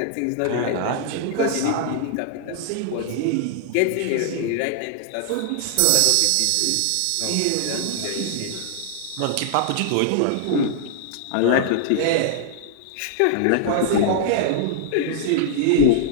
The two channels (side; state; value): both; different; correlation -0.01